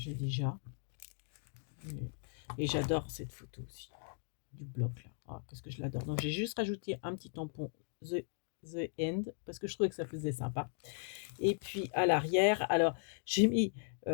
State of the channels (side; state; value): right; silent; digital silence